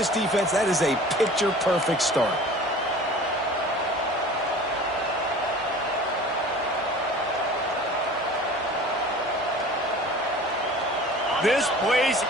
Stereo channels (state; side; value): normal; both; correlation 0.42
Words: defense, that is a picture-perfect start. This place